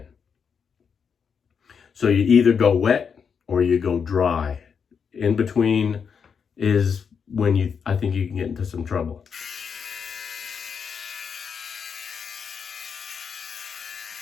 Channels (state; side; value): quieter; right; 6.5 dB